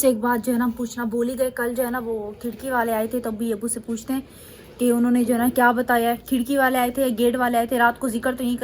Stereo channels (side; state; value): both; identical; correlation 1.00